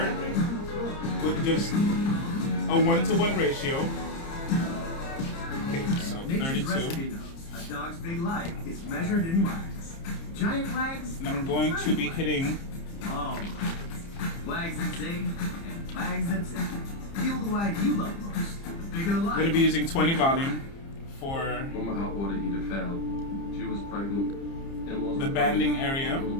with just a 1-to-1 ratio. Okay, so 32. A dog's big life is measured in wags. Giant wags, And I'm going to be hitting long wags. Wags that zig and wags that zig. Feel the wag you love most. The bigger the I'm life. going to be using 20 volume for When my hot water heater failed, she was pregnant and lost the her banding belly. area. A little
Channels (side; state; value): right; late; 30 ms